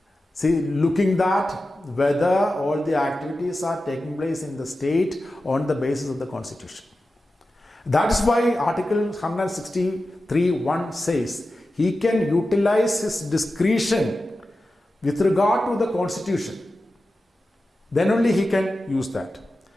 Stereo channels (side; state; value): both; normal; correlation 0.93